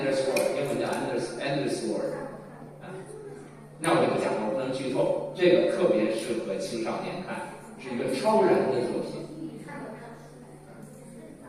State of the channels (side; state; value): both; identical; correlation 1.00